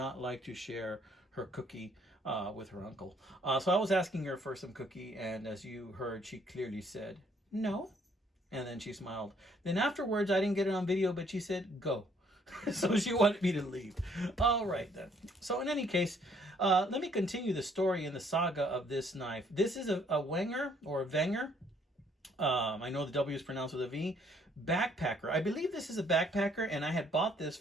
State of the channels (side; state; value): both; normal; correlation 0.65